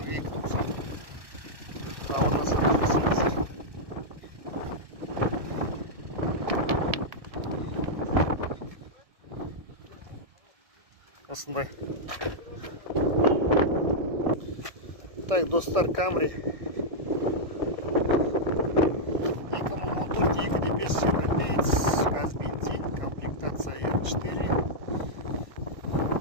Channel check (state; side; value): late; left; 1.7 ms